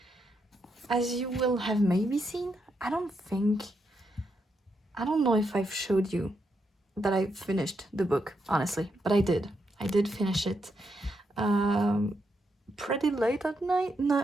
as you will have maybe seen, I don't know if I've showed you that I finished the book, honestly, but I did. I did finish it. Um, Pretty late at night,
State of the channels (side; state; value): both; normal; correlation 0.81